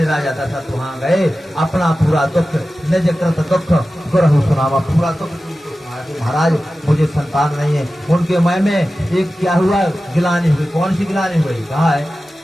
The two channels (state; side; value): normal; both; correlation 0.95